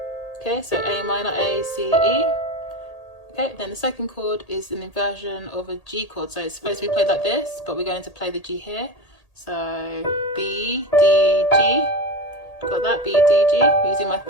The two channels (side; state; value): right; late; 1.8 ms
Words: Okay, so A minor, A, C, E. Okay, then the second chord is an inversion of a G chord. So it's supposed to be played like this, but we're going to play the G here. So B, D, G. Got that? B, D, G. Using my